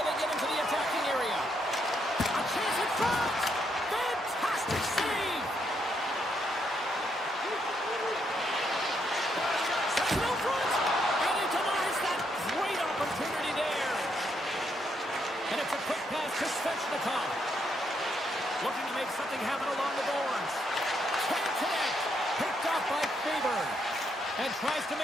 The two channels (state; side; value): normal; both; correlation 0.77